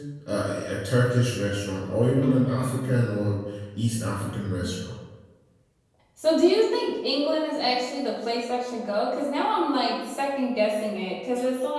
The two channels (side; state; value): both; identical; correlation 1.00